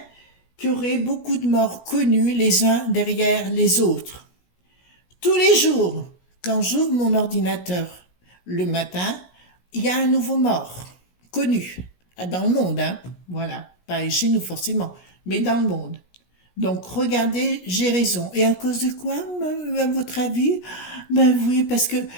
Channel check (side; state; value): right; late; 17 ms